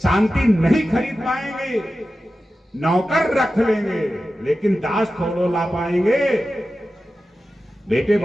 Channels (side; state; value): both; normal; correlation 0.93